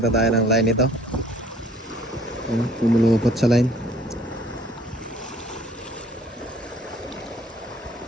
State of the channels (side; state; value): both; normal; correlation 0.57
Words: tayo ng line ito. Pumulupot sa line.